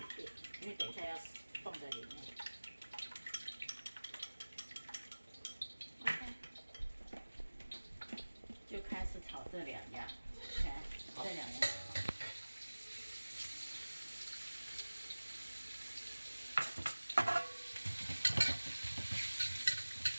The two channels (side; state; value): both; inverted; correlation -1.00